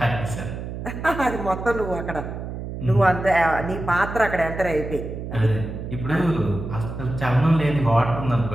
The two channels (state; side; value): noise; right; hum, 7 dB below the sound